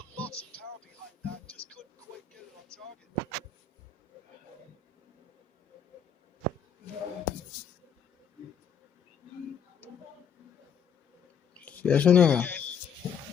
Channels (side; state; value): right; quieter; 6.9 dB